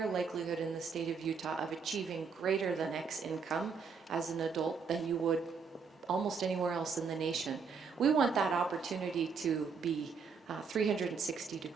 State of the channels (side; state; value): left; quieter; 5.5 dB